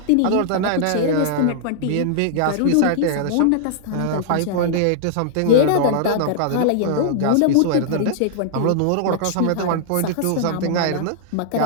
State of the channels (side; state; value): both; different; correlation -0.01